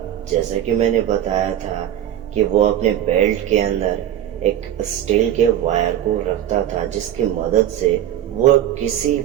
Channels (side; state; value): left; quieter; 11.5 dB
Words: जैसा कि मैंने बताया था कि वो अपने बेल्ट के अंदर एक स्टील के वायर को रखता था, जिसकी मदद से वो किसी